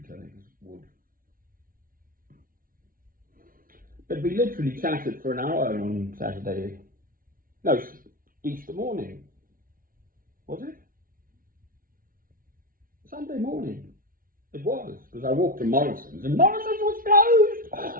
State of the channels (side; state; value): left; late; 0.41 ms